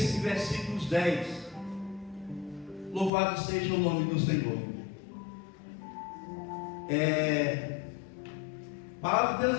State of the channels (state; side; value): drops out; right; at 3.1 s